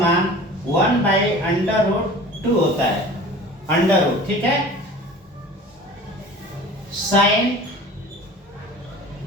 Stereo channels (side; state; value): both; normal; correlation 0.42